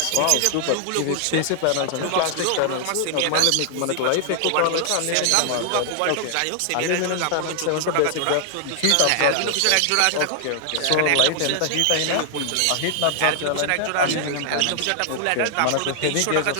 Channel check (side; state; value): both; different; correlation 0.00